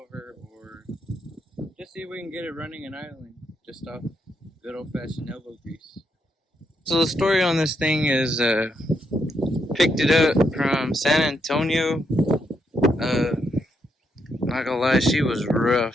or just see if we can get it running and idling just off good old-fashioned elbow grease. So the story on this thing is picked it up from San Antonio. Not gonna lie, she was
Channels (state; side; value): normal; both; correlation 0.79